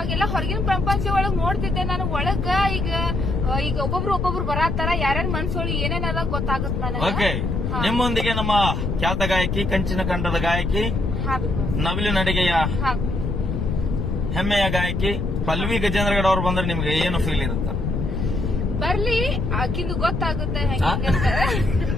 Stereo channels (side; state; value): left; noise; rumble, 1 dB below the sound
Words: ಹೊರಗಿನ ಪ್ರಪಂಚ ಒಳಗ್ ನೋಡ್ತಿದ್ದೆ. ನನಗ್ ಒಳಗ ಈಗ ಒಬ್ಬೊಬ್ರು ಬರಾತಾರ. ಯಾರ್ಯಾರ ಮನ್ಸೊಳಗೆ ಏನೇನದ ಗೊತ್ತಾಗುತ್ತೆ ನನಗೆ. ಓಕೆ, ನಿಮ್ಮೊಂದಿಗೆ ನಮ್ಮ ಖ್ಯಾತ ಗಾಯಕಿ, ಕಂಚಿನ ಕಂಠದ ಗಾಯಕಿ, ನವಿಲು ನಡಿಗೆಯ ಹೆಮ್ಮೆಯ ಗಾಯಕಿ ಪಲ್ವಿ ಗಜೇಂದ್ರಗಡ ಅವ್ರು ಬಂದ್ರೆ ನಿಮ್ಗೆ ಏನು ಫೀಲ್ ಇರುತ್ತ? ಬರ್ಲಿ, ಆಕಿಂದು ಗೊತ್ತಾಗುತ್ತೆ ಹೆಂಗಂತ.